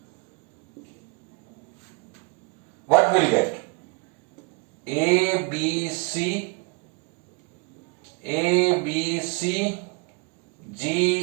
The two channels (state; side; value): quieter; left; 32.1 dB